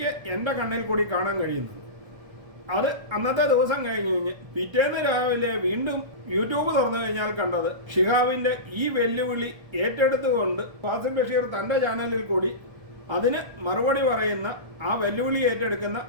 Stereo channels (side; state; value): left; late; 1.3 ms